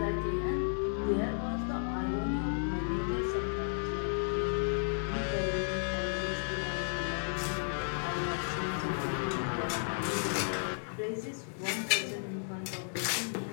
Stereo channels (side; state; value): right; silent; 55 dB below the other